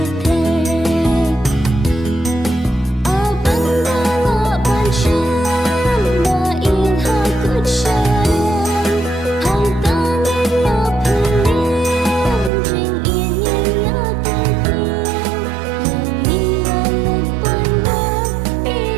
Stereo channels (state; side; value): drops out; left; at 12.5 s